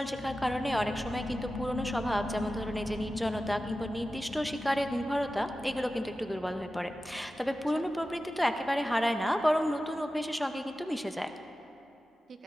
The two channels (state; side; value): normal; both; correlation 0.94